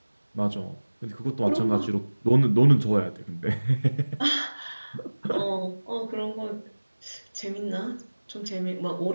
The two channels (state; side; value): inverted; both; correlation -1.00